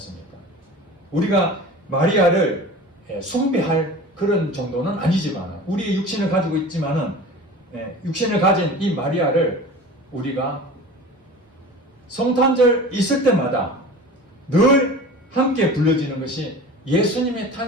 우리가 마리아를 숭배할 그런 정도는 아니지만 우리의 육신을 가지고 있지만은 육신을 가진 이 마리아를 우리가 성탄절 있을 때마다 늘 함께 불러지는 것이 예수님의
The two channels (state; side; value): normal; both; correlation 0.38